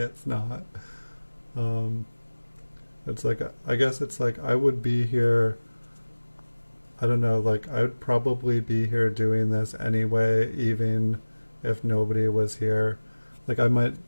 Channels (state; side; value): inverted; both; correlation -1.00